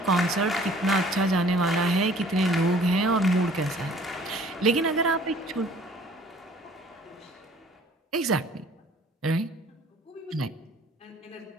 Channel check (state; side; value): normal; both; correlation 0.54